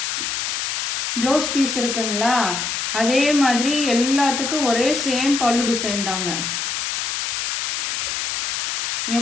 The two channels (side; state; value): left; noise; hiss, 1 dB below the sound